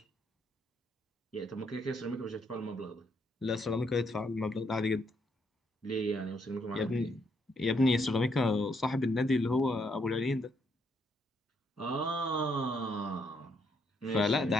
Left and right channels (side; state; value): both; normal; correlation 0.74